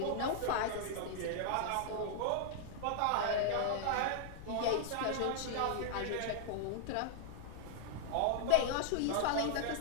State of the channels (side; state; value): both; different; correlation -0.01